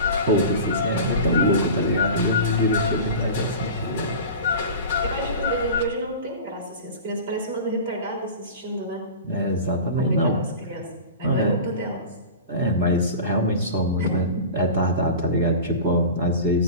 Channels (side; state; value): both; inverted; correlation -0.33